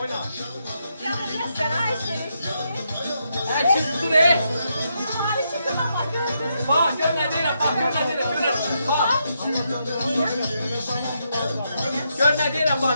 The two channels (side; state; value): both; inverted; correlation -0.80